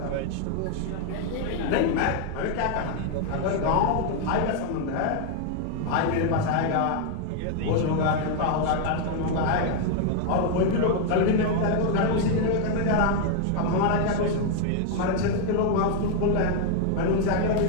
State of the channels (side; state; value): both; different; correlation 0.00